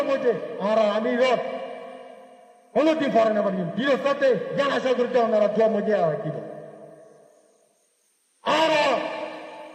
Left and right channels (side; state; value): both; identical; correlation 1.00